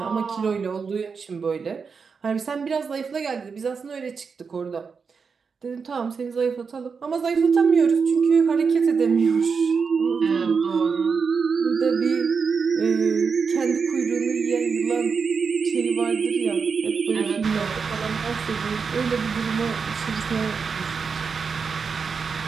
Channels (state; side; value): quieter; left; 5.5 dB